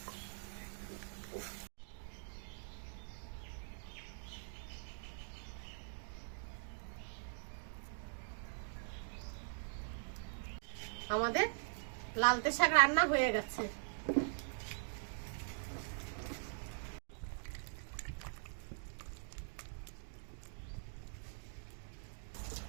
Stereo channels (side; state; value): left; silent; digital silence